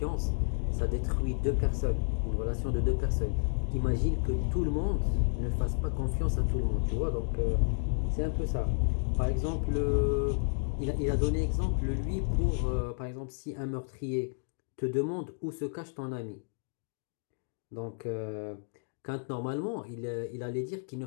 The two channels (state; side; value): silent; right; digital silence